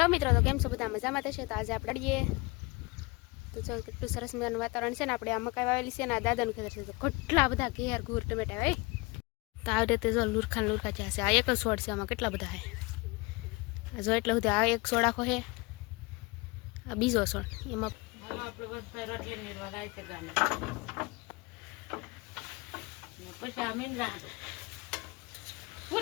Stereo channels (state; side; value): quieter; right; 25.5 dB